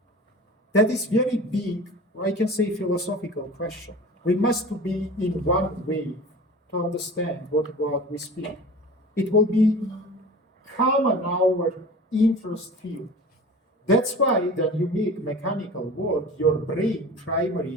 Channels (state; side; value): normal; both; correlation 0.38